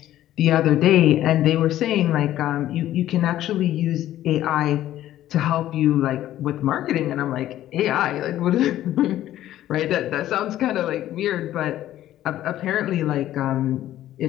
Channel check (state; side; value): quieter; right; 13.2 dB